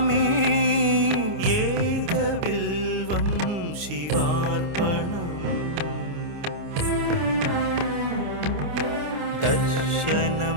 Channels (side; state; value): left; late; 29 ms